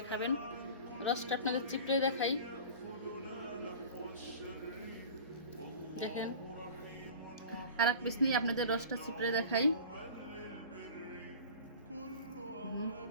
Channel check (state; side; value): inverted; both; correlation -0.39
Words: খাবেন। রসটা আপনাদের চিপড়ে দেখাই, দেখেন। আর এক পিস নিয়ে আপনাদের রসটা চিপড়ে দেখাই।